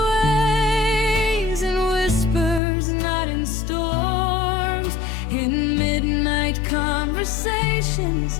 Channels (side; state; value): right; drops out; at 2.6 s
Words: ways, in whispers, not in storms, in midnight conversations,